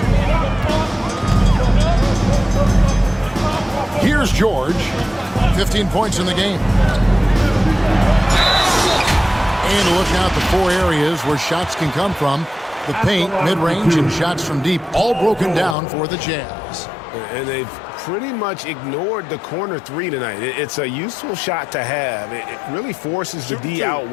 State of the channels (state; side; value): drops out; right; at 15.8 s